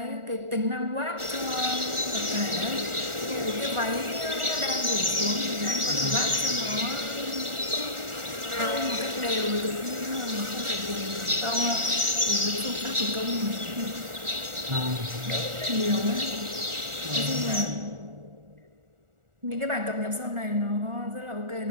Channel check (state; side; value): late; left; 1.4 ms